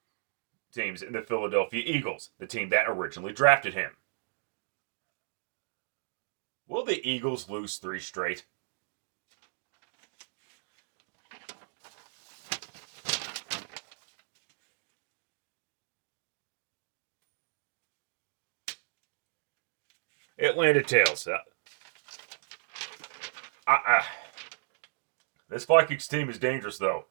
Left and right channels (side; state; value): left; silent; digital silence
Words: in the Philadelphia Eagles, the team that originally drafted him. Will the Eagles lose 3 straight? Atlanta Tales. This Vikings team is dangerous, though,